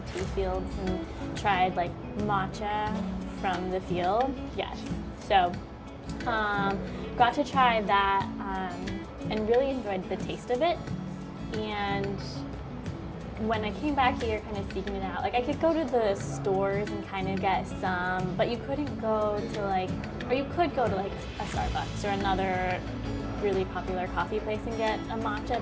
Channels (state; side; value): identical; both; correlation 1.00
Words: tea fields and tried like matcha from the field. Yes, so got to try that and really enjoyed the taste of it. And when I came back here kind of seeking it out, like I could go to the stores and kind of get some, but you couldn't go to like, or you could go to like a Starbucks or another really popular coffee place and get a